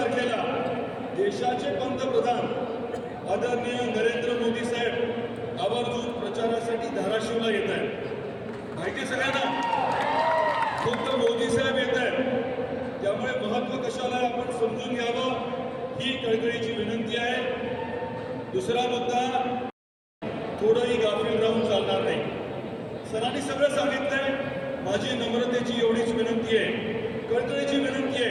देशाचे पंतप्रधान आदरणीय नरेंद्र मोदी साहेब आवर्जून प्रचारासाठी धाराशिवला येत आहेत. माहिती सगळ्यांना फक्त मोदी साहेब येत आहेत, त्यामुळे महत्व कशाला आहे आपण समजून घ्यावं ही कळकळीची विनंती आहे. दुसरा मुद्दा, थोडंही गाफील राहून चालणार नाही. सरांनी सगळं सांगितलंय. माझी नम्रतेची एवढीच विनंती आहे, कळकळीची विनंती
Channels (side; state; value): both; identical; correlation 1.00